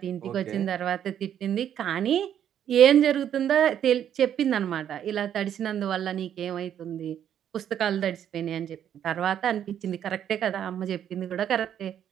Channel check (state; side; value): quieter; left; 9.7 dB